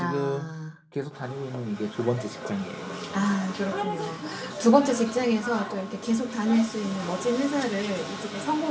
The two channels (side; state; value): both; identical; correlation 1.00